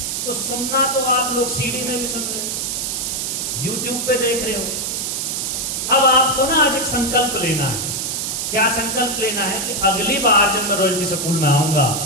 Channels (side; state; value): right; noise; hiss, 2 dB below the sound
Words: तो सुनना तो आप लोग सीडी में भी सुन रहे हो, यूट्यूब पे देख रहे हो। अब आपको ना आज एक संकल्प लेना है। क्या संकल्प लेना है? कि अगली बार जब मैं रॉयल्टी स्कूल में आऊंगा